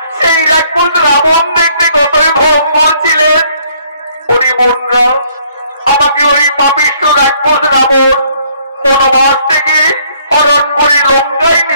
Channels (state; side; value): inverted; both; correlation -0.64